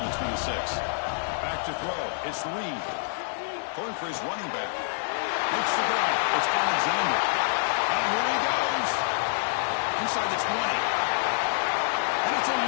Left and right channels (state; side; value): silent; right; 60 dB below the other